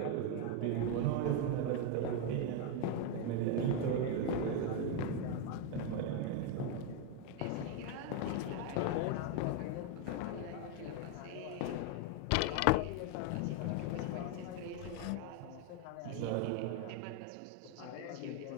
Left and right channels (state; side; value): different; both; correlation 0.01